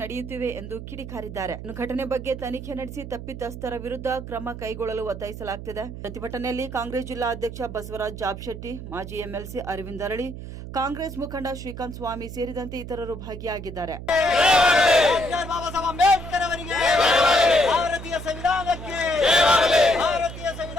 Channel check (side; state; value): right; noise; hum, 10 dB below the sound